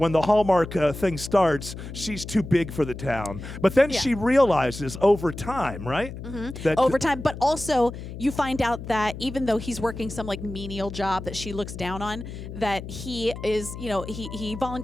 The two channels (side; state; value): left; noise; hum, 10 dB below the sound